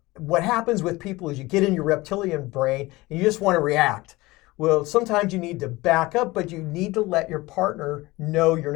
what happens with people is you get in your reptilian brain and you just want to react. Well, sometimes you need to back up, but you need to let your partner know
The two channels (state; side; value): quieter; right; 20.8 dB